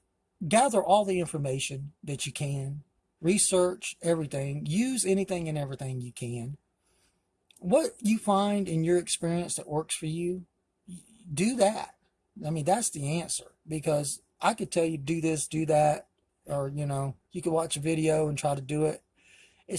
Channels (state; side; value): identical; both; correlation 1.00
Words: gather all the information that you can, research everything, use anything and everything you can. What you find in your experience that works for you, do that. I mean, that's the answer, because I could tell you do this, do that, or, you could watch a video and try to do it.